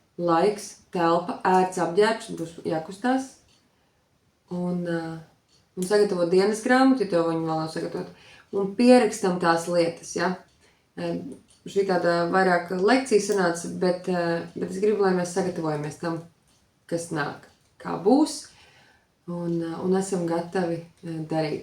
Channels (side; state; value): both; identical; correlation 1.00